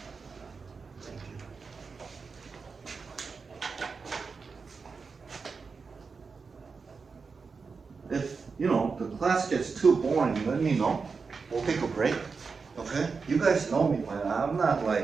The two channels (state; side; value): quieter; left; 4.9 dB